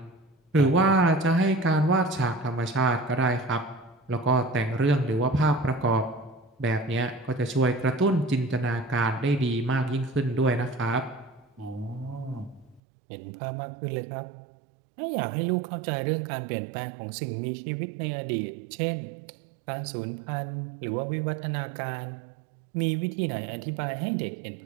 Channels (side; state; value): left; drops out; at 12.8 s